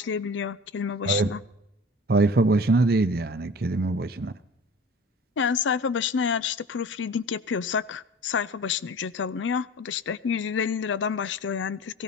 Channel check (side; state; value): both; normal; correlation 0.40